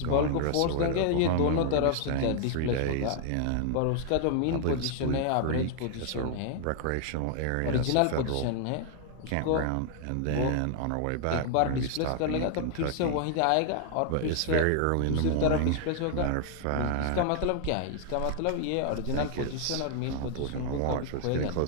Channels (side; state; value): both; different; correlation 0.00